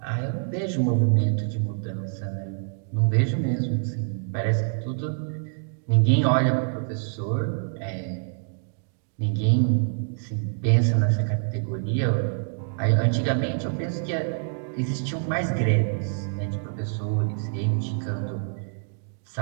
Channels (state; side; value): silent; left; digital silence